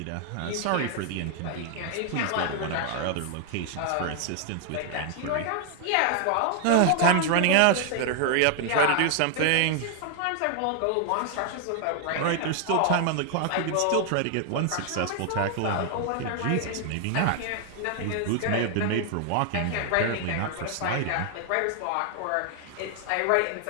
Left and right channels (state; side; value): different; both; correlation 0.00